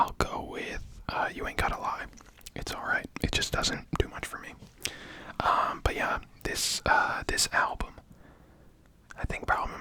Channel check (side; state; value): both; identical; correlation 1.00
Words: go with You Ain't Gotta Lie. It's alright. It just doesn't do much for me. But yeah, this album, I think probably